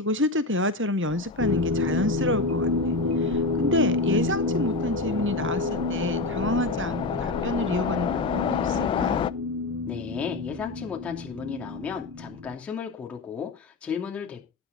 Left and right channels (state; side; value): quieter; right; 3.0 dB